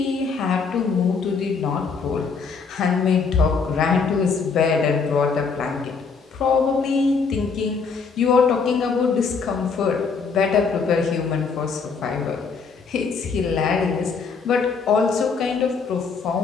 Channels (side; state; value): right; quieter; 5.2 dB